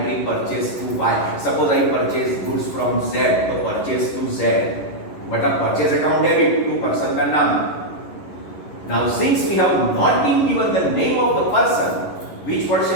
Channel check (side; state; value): right; late; 11 ms